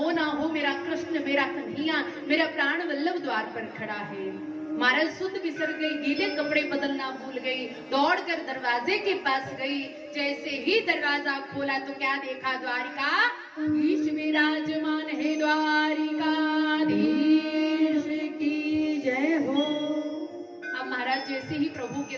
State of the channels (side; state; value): both; identical; correlation 1.00